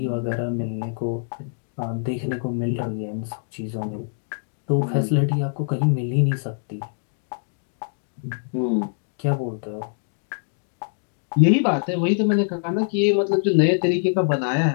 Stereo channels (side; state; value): right; silent; digital silence